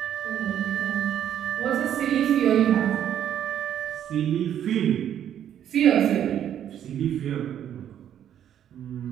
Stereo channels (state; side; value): quieter; left; 10.1 dB